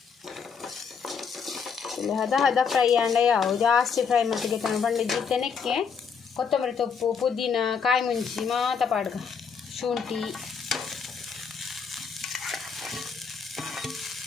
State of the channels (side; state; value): right; quieter; 6.2 dB